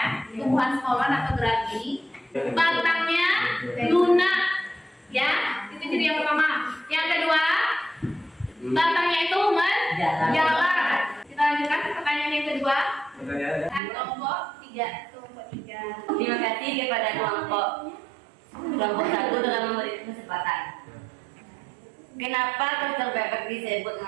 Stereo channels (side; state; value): left; drops out; at 13.8 s